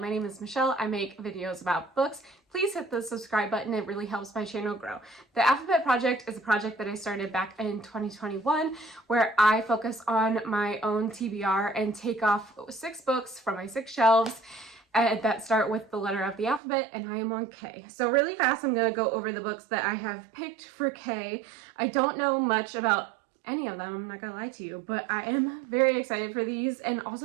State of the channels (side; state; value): left; drops out; at 16.6 s